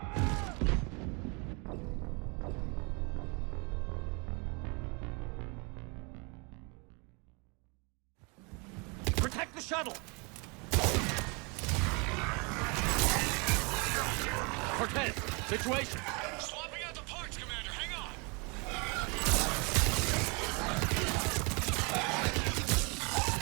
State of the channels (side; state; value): left; quieter; 31.5 dB